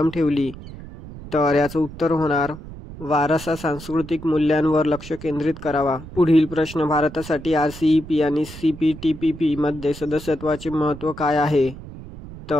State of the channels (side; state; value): right; noise; rumble, 14 dB below the sound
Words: ठेवली? तर याचं उत्तर होणार वारसा सांस्कृतिक मूल्यांवर लक्ष केंद्रित करावा। पुढील प्रश्न, भारतासाठी RCEP आणि CPTPP मध्ये सदस्यत्वाचे महत्त्व काय आहे?